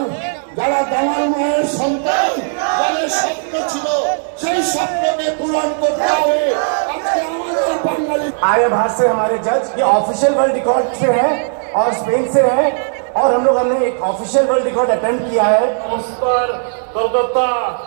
যারা দামাল মায়ের সন্তান, যাদের স্বপ্ন ছিল সেই স্বপ্নকে পূরণ করতে হবে। আজকে আমাদের বাঙালি आर्य भारत से हमारे जज ये ऑफिशियल वर्ल्ड रिकॉर्ड से है और स्पेन से है, और हमने एक ऑफिशियल वर्ल्ड रिकॉर्ड अटेम्प्ट किया है। नमस्कार Kolkata,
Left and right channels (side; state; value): left; silent; digital silence